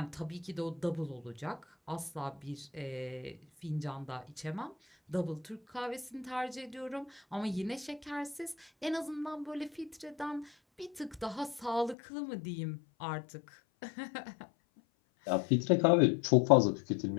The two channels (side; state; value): right; drops out; at 12.0 s